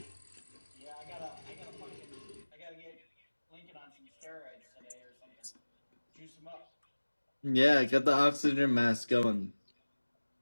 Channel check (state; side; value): inverted; both; correlation -1.00